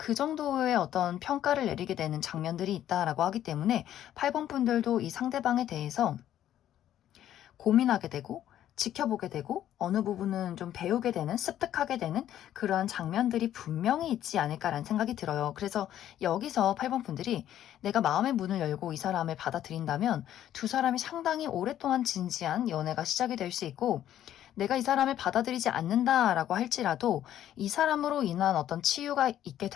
정도의 어떤 평가를 내리게 되는 장면들이 있다라고 하기 때문에 8번 분들도 이 상대방에 대해서 고민하게 되고 지켜보게 되고 어느 부분은 좀 배우게 되는, 습득하게 되는 그러한 장면들이 분명히 있지 않을까라는 생각이 들어요. 그래서 여기서 8번 분들이 내가 마음의 문을 열고 이 사람을 받아들인다면 두 사람이 상당히 오랫동안 진지한 연애가 시작이 될 수 있고 내가 이 사람을 받아들이지 않는다라고 할지라도 이 사람으로 인한 어떤 치유가 있게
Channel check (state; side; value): quieter; right; 11.6 dB